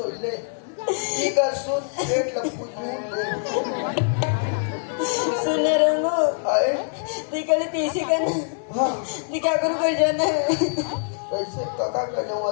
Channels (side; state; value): right; silent; digital silence